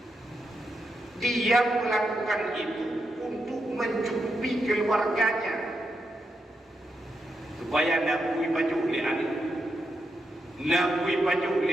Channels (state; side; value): normal; both; correlation 0.85